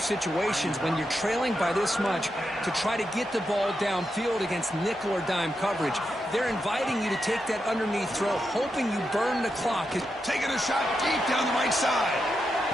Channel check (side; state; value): both; normal; correlation 0.86